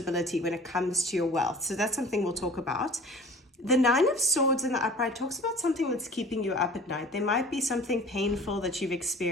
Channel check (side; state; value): both; normal; correlation 0.45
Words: when it comes to your wealth. So that's something we'll talk about. The Nine of Swords in the upright talks about something that's keeping you up at night. There might be something painful that you've